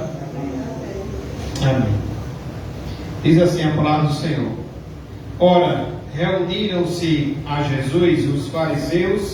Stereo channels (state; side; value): identical; both; correlation 1.00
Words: Amém. Diz assim a palavra do Senhor: Ora, reuniram-se a Jesus os